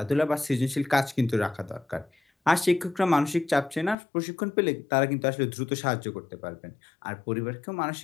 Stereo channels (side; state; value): right; drops out; at 4.0 s